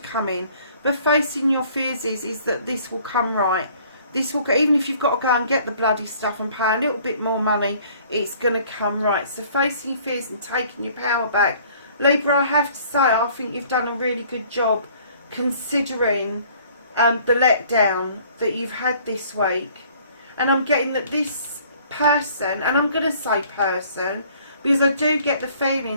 in, but facing your fears is that this will come right. This will, even if you've got to go and get the bloody stuff and pay a little bit more money, it's going to come right. So facing your fears and taking your power back. Libra, I have to say, I think you've done a really good job considering the letdown that you've had this week. And I'm getting that this person, and I'm going to say person, because I do get the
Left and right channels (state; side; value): inverted; both; correlation -0.56